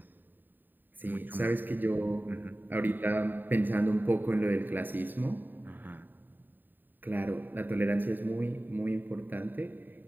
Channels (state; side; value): late; left; 0.091 ms